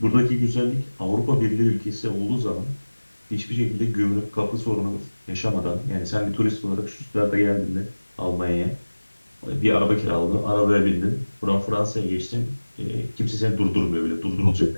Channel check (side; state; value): both; inverted; correlation -1.00